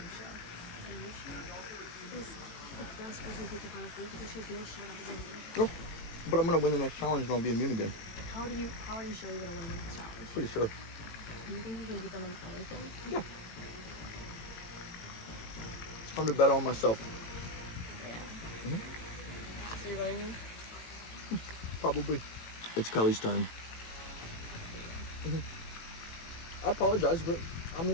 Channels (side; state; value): right; late; 18 ms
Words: Anisha is the best person to take the final three because she's no shutout winner. Go. But I'm gonna win the next challenge and I'll be immune again. How are you sure you're gonna win the next challenge? Pretty sure. Do you think you can beat them on anything? Yeah. It's time to bet on myself. So you're voting me? Probably. It's Kelly's turn. I apologize, but I